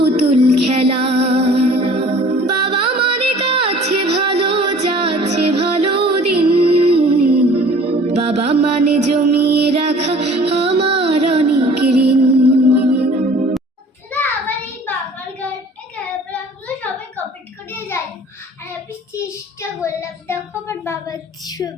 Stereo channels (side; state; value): both; normal; correlation 0.49